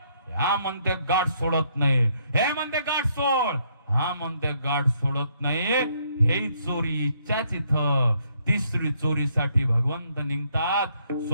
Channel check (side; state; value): both; inverted; correlation -0.71